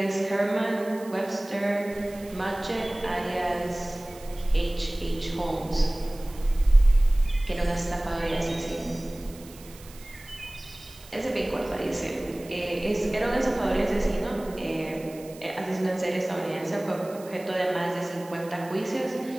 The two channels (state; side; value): noise; right; hiss, 21 dB below the sound